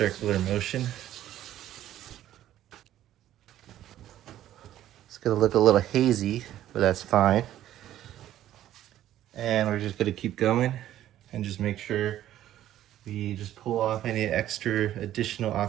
motion. It's gonna look a little hazy, but that's fine. And we're just gonna keep going and just make sure we just pull off any extra additional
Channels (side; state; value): left; quieter; 12.6 dB